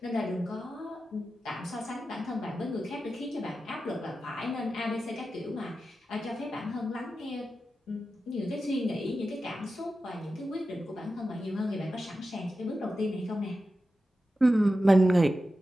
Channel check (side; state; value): both; normal; correlation 0.92